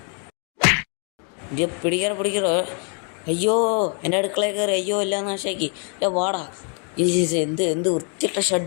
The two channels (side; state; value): right; quieter; 39.7 dB